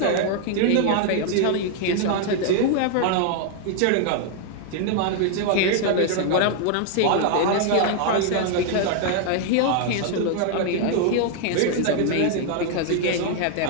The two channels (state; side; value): different; both; correlation 0.00